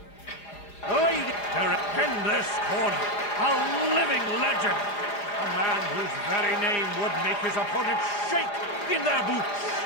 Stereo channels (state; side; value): late; right; 4.9 ms